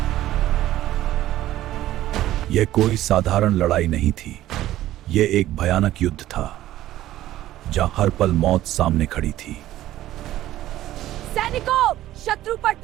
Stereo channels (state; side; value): quieter; left; 14.2 dB